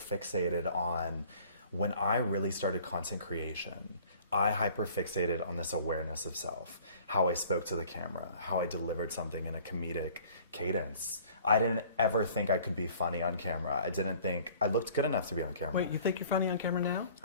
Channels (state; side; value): inverted; both; correlation -0.51